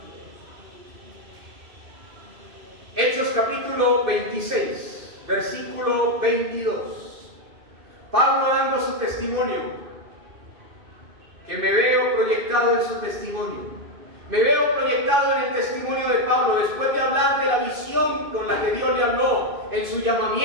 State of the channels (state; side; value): late; left; 2.6 ms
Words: Hechos capítulo 26, versículo 22. Pablo dando su testimonio, que me veo proyectado en su testimonio. Me veo proyectado en el testimonio de Pablo, después de hablar de la visión con la que Dios le habló en su